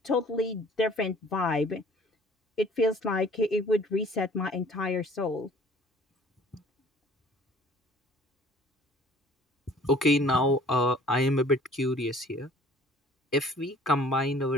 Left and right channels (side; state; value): both; normal; correlation 0.53